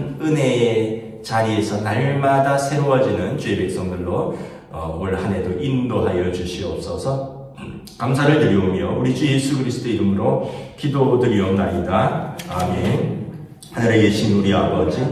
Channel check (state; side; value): identical; both; correlation 1.00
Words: 은혜의 자리에서 날마다 새로워지는 주의 백성들로 올 한 해도 인도하여 주시옵소서. 감사를 드리오며 우리 주 예수 그리스도의 이름으로 기도드리옵나이다. 아멘. 하늘에 계신 우리